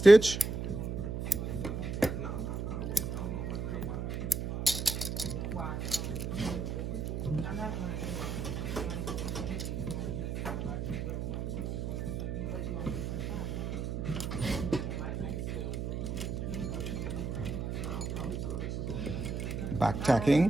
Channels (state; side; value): noise; right; hum, 3 dB below the sound